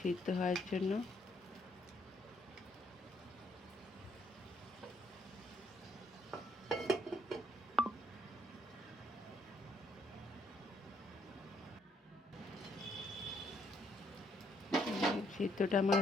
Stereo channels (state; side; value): normal; both; correlation 0.71